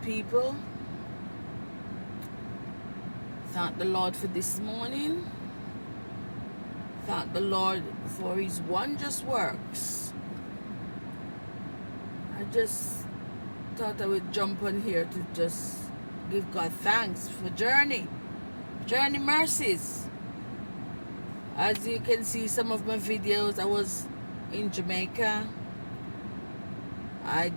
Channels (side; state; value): both; inverted; correlation -1.00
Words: Thank the Lord for this morning. Thank the Lord for His wondrous works. I just thought I would jump on here to just give God thanks for journey mercies. As you can see, some of my videos, I was in Jamaica. I